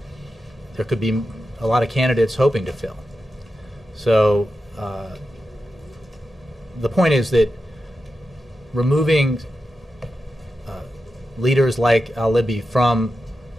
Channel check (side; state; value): both; normal; correlation 0.90